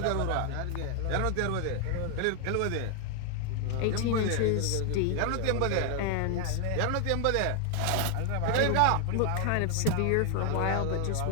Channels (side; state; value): both; different; correlation 0.00